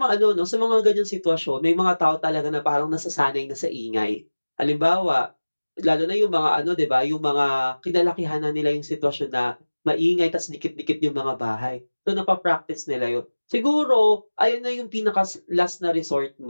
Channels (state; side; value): inverted; both; correlation -1.00